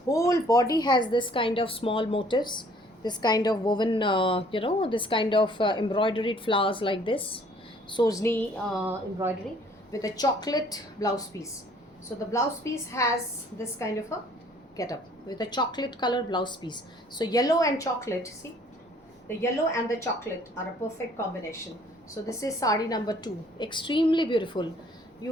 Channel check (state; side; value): normal; both; correlation 0.58